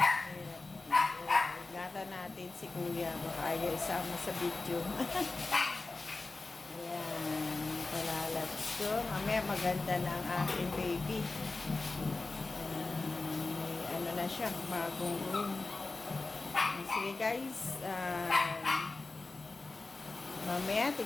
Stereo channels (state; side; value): quieter; right; 3.5 dB